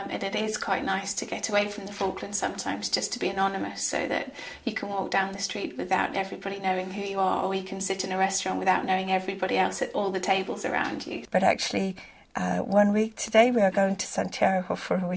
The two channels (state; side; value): identical; both; correlation 1.00